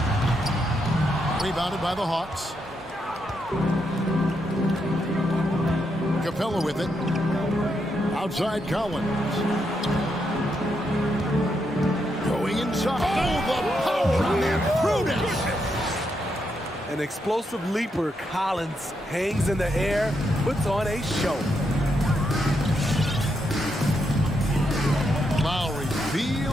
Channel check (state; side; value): normal; both; correlation 0.81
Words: Rebounded by the Hawks. Capella with it. Outside Collins. Going inside. Oh, the power on that prudence. An explosive leaper, Collins hangs in the air, puts on a show. Lowry